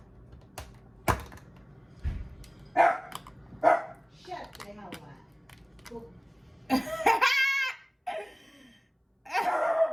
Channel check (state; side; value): identical; both; correlation 1.00